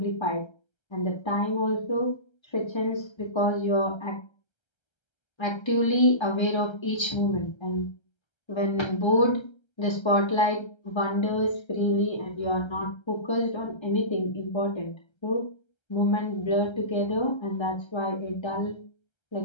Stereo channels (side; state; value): right; late; 1.3 ms